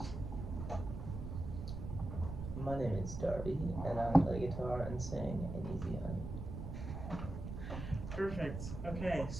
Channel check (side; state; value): right; noise; rumble, 6 dB below the sound